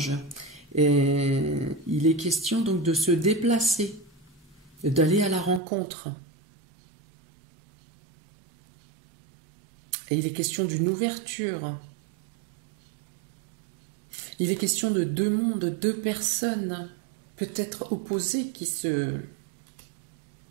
Et il est question donc de se déplacer, d'aller à la rencontre. Et il est question d'une ouverture. Il est question de deux mondes, deux personnes, peut-être opposées, qui se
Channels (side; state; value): left; drops out; at 5.6 s